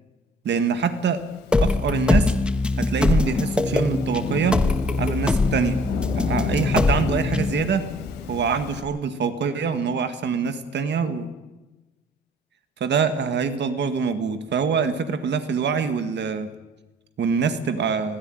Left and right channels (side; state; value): both; normal; correlation 0.56